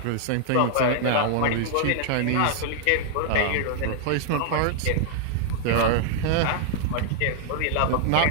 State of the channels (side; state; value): both; different; correlation -0.01